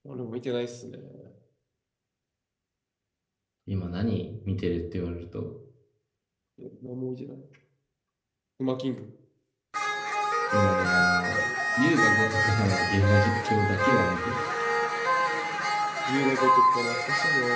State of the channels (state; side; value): identical; both; correlation 1.00